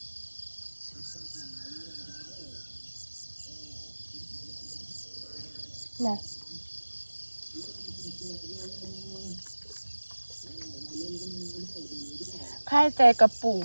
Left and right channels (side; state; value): both; inverted; correlation -1.00